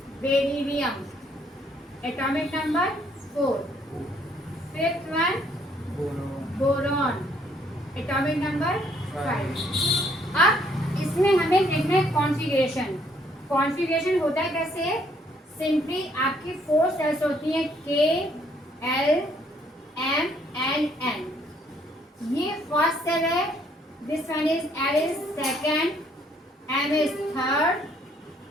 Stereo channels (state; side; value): normal; both; correlation 0.67